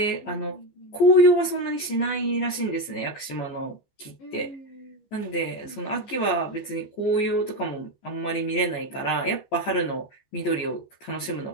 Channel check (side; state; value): right; late; 15 ms